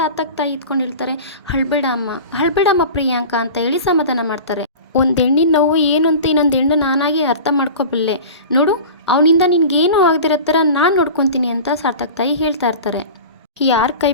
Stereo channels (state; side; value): inverted; both; correlation -0.35